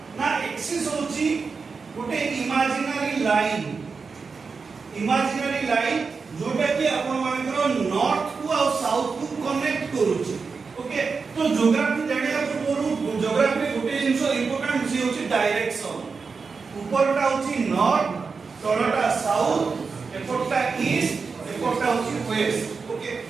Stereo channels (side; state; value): left; quieter; 4.9 dB